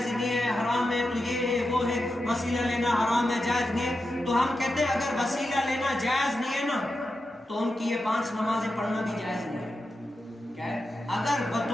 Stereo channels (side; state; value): both; normal; correlation 0.89